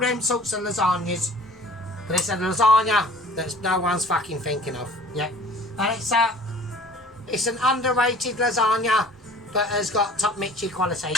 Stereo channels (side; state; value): both; normal; correlation 0.47